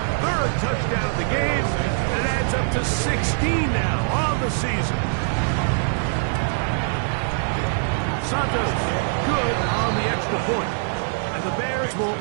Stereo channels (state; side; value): silent; left; digital silence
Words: 3rd touchdown of the game. And it adds up to 16 now on the season. Santos good on the extra point. And the Bears will